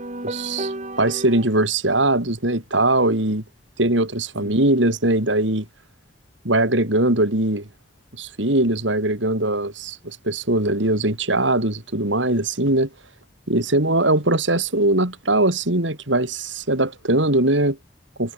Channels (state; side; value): normal; both; correlation -0.01